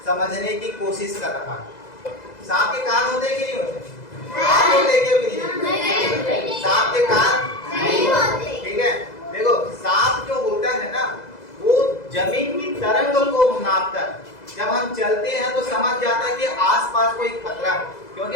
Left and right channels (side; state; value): right; late; 2.0 ms